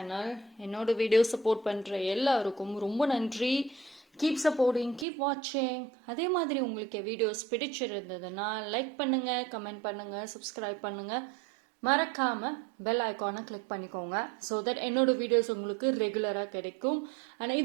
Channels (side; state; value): left; drops out; at 5.1 s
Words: என்னோட video support பண்ணுற எல்லாருக்கும் ரொம்ப நன்றி. கீப் சப்போர்ட்டிங், கீப் வாட்சிங். அதே மாதிரி உங்களுக்கு வீடியோஸ் பிடிச்சிருந்ததுன்னா லைக் பண்ணுங்கள், கமெண்ட் பண்ணுங்கள், சப்ஸ்கிரைப் பண்ணுங்கள். மறக்காம பெல் ஐக்கானை கிளிக் பண்ணிக்கோங்க. ஸோ தட் என்னோட வீடியோஸ் உங்களுக்கு ரெகுலராக கிடைக்கும். ஆனால்